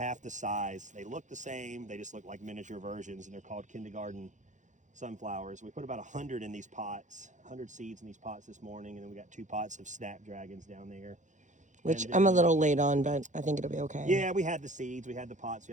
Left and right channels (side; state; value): left; late; 0.35 ms